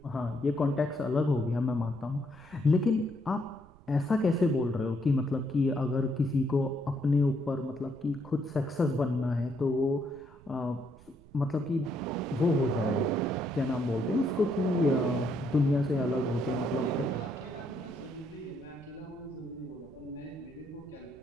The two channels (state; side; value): noise; right; rumble, 23 dB below the sound